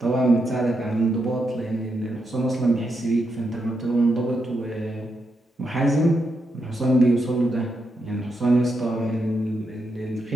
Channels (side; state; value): both; normal; correlation 0.83